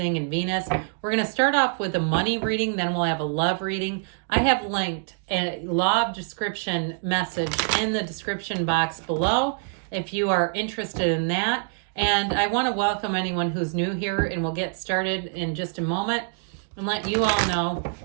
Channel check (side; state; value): left; silent; digital silence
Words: and Venus. We're going to start off with a money reading, then we'll have a love reading. I have linked a law of description message in the description box below if you are interested in that. And I want to welcome anyone who's new here, and we'll get started in just a moment. And let you all know